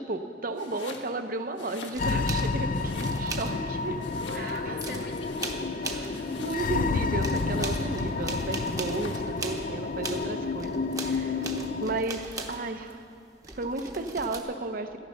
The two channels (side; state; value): both; normal; correlation 0.27